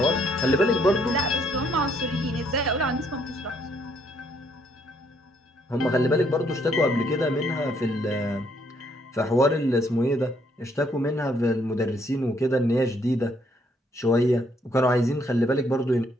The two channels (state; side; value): normal; both; correlation 0.70